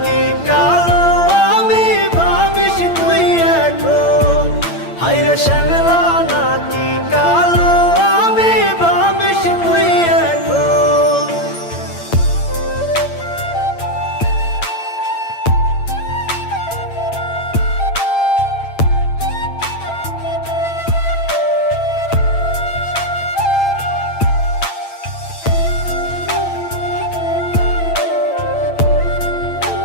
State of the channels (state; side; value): late; right; 8.8 ms